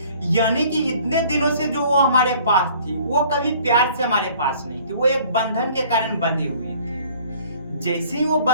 यानी कि इतने दिनों से जो वो हमारे पास थी वो कभी प्यार से हमारे पास नहीं थी, वो एक बंधन के कारण बंधी हुई थी। जैसे ही वो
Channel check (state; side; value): inverted; both; correlation -0.54